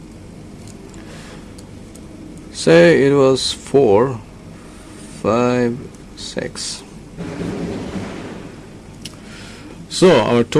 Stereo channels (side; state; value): both; identical; correlation 1.00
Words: Say it was 4, 5, 6. So our